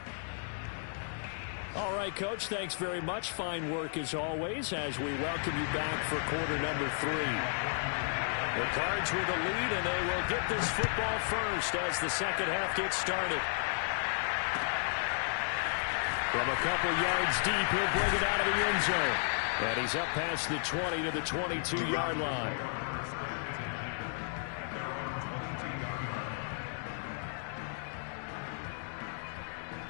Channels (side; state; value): right; silent; digital silence